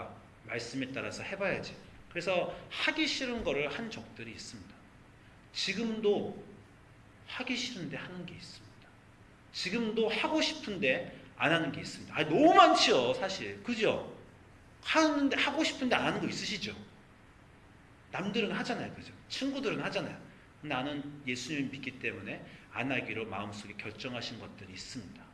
말씀에 따라서 해봐야지. 그래서 하기 싫은 거를 한 적들이 있습니다. 지금도 하기 싫은데 하는 게 있습니다. 지금도 하고 싶은데 안 하는 게 있습니다. 너무 많지요, 사실. 그죠? 하고 싶은데 안 하는 거 있으시죠? 남들은 하잖아요, 그죠? 친구들은 하잖아요. 나는 예수님을 믿기 때문에 안 하기로 마음속에 결정하신 것들이 있습니다.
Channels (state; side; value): identical; both; correlation 1.00